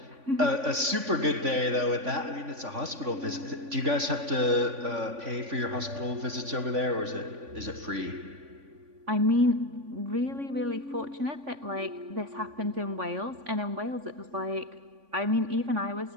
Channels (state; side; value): late; left; 3.5 ms